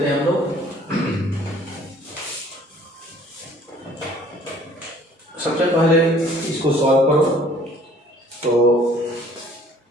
हैं हम लोग। सबसे पहले इसको सॉल्व करो, तो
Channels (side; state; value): both; normal; correlation 0.55